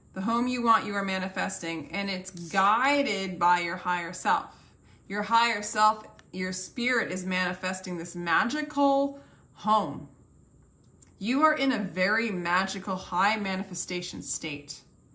The home you want, you are manifesting, and it's guided by your higher self. Your higher self, your spirit is manifesting this magical home. You are in a very magical, high manifestation state.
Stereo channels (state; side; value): identical; both; correlation 1.00